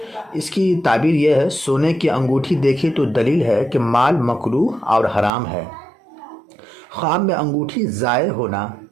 اس کی تعبیر یہ ہے، سونے کی انگوٹھی دیکھے تو دلیل ہے کہ مال مکروہ اور حرام ہے۔ خواب میں انگوٹھی ضائع ہونا،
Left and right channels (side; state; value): left; drops out; at 5.3 s